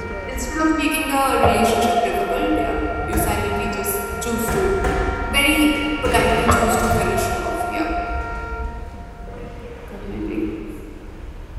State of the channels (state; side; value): identical; both; correlation 1.00